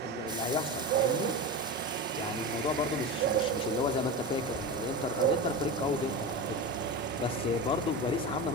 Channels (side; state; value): both; normal; correlation 0.24